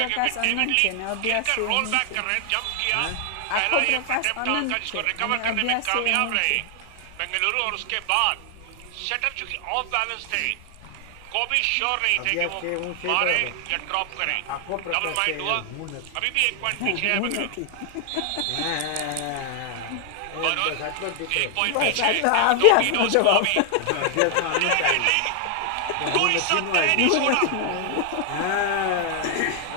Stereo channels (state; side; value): different; both; correlation 0.00